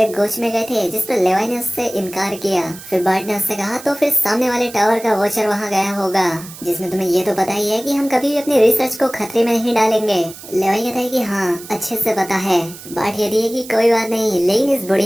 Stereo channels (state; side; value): noise; right; hiss, 16 dB below the sound